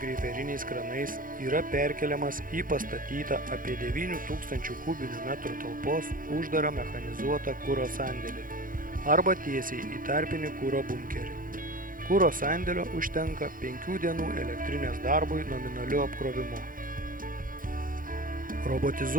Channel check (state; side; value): late; left; 0.40 ms